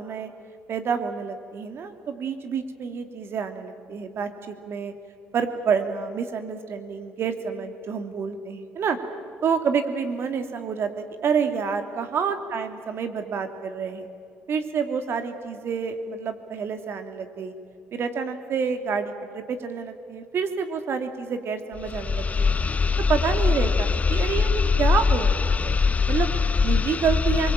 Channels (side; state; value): both; normal; correlation 0.69